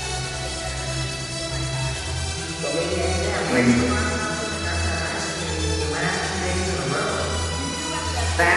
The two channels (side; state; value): both; identical; correlation 1.00